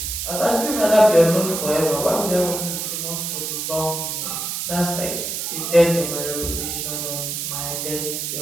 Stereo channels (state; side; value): noise; right; hiss, 3 dB below the sound